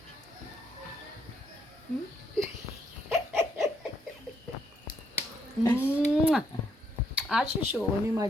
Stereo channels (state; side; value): normal; both; correlation 0.73